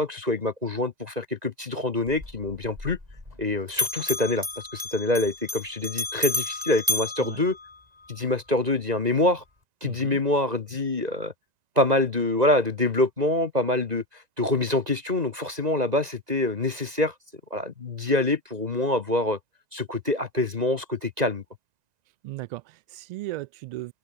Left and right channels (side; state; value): left; late; 1.9 ms